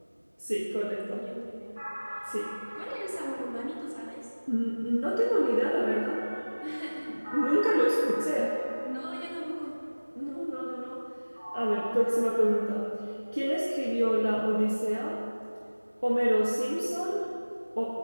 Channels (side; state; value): both; inverted; correlation -1.00